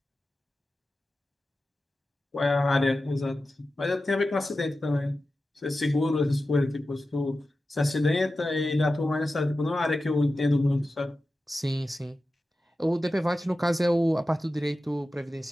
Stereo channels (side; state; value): both; normal; correlation 0.93